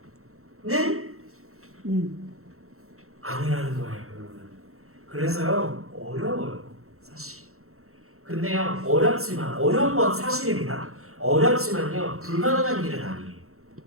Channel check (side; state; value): left; late; 0.63 ms